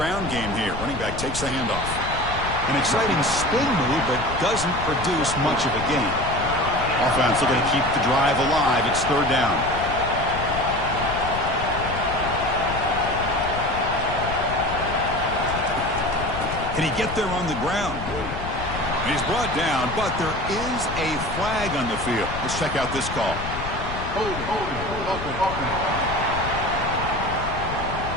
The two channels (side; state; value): left; noise; rumble, 8 dB below the sound